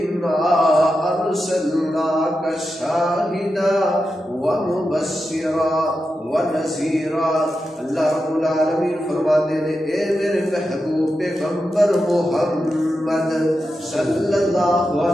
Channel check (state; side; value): normal; both; correlation 0.89